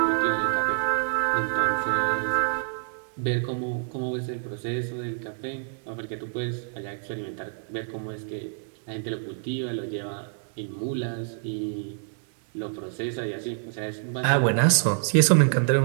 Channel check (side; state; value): left; silent; digital silence